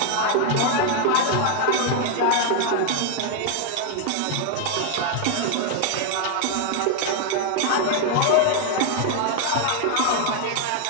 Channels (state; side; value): different; both; correlation 0.00